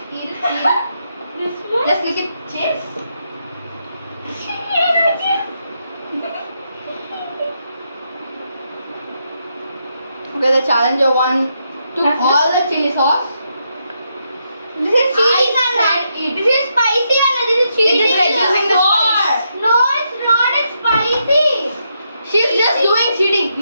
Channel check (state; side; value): inverted; both; correlation -0.80